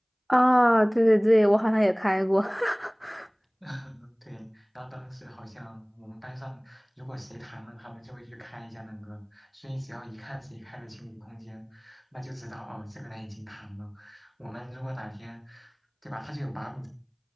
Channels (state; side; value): identical; both; correlation 1.00